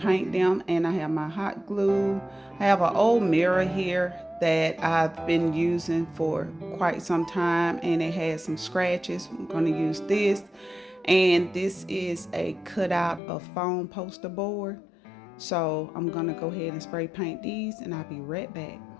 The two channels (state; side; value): drops out; right; at 13.2 s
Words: them, and I have my hot glue. I have an old mirror here that I've been using for quite some time, and it has some scratches. I'm going to use this. And this is a cutout of foam poster board. So I'm gonna go ahead and spray paint these, and I'll be right back.